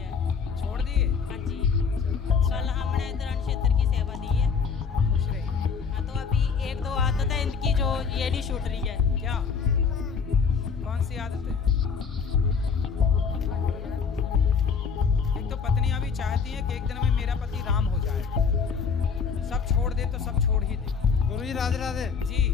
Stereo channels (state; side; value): quieter; right; 5.9 dB